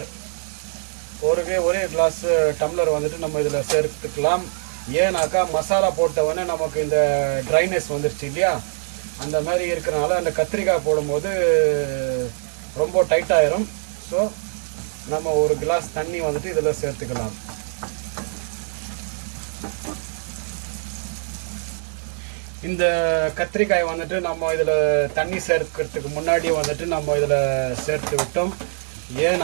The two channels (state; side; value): silent; left; digital silence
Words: ஒரே கிளாஸ் டம்ளர் வந்துட்டு நம்ம இதில் சேர்த்துக்கலாம். ஏன்னாக்கா மசாலா போட்டவொடனே நமக்கு இந்த ட்ரைனஸ் வந்துருச்சு இல்லையா, அந்த மாதிரி இருக்கிறனால அந்த கத்திரிக்காய் போடும்போது ரொம்ப டைட்டாயிரும். ஸோ நம்ம ஒரு கிளாஸ் தண்ணி வந்துட்டு இதில் சேர்த்துக்கலாம். இந்த கத்திரிக்காய் வந்துட்டு நம்ம இதில் தண்ணி சேர்க்கிறதுக்கு முன்னாடி வந்துட்டு நம்ம இதில் சேர்த்து விட்டோம்.